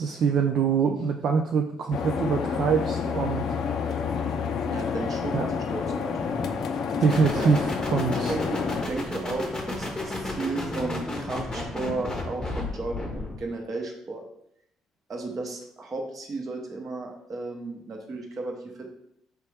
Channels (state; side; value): normal; both; correlation 0.67